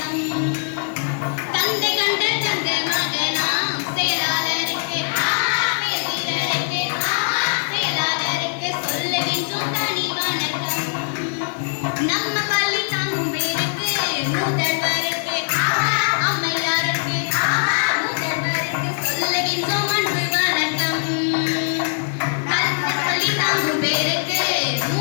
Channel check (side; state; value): right; silent; digital silence